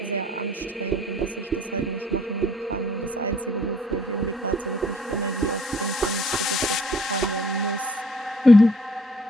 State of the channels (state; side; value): normal; both; correlation 0.59